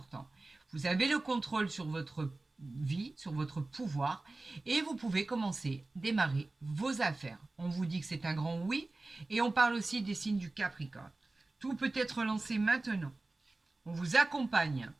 Vous avez le contrôle sur votre vie, sur votre pouvoir, et vous pouvez commencer, démarrer vos affaires. On vous dit que c'est un grand oui, et on parle aussi des signes du Capricorne. Tout peut être lancé maintenant. On vous accompagne.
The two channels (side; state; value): left; quieter; 3.1 dB